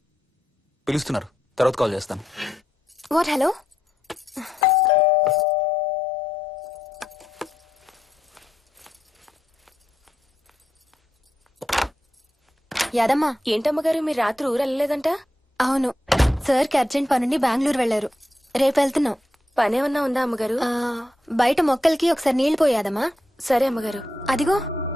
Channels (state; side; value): normal; both; correlation 0.83